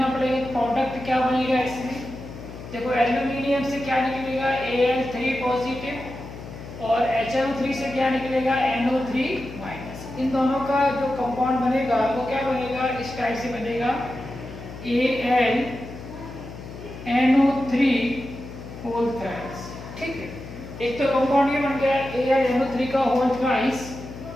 पड़ेगा। प्रोडक्ट क्या बनेगा इसमें? देखो, एल्यूमिनियम से क्या निकलेगा? Al3 पॉजिटिव, और HNO3 से क्या निकलेगा? NO3 minus. इन दोनों का जो कंपाउंड बनेगा वो क्या बनेगा? इस टाइप से बनेगा AlNO3 होल थ्राइस। ठीक है, एक तो कंपाउंड ये बन गया AlNO3 का होल थ्राइस,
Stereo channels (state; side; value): noise; left; hum, 12 dB below the sound